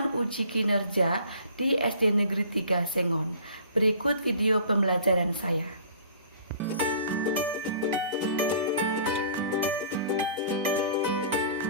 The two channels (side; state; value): both; inverted; correlation -0.50